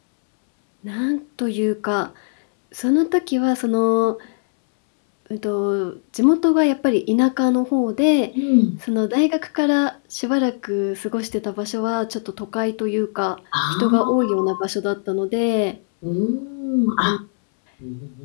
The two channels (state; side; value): silent; right; 65 dB below the other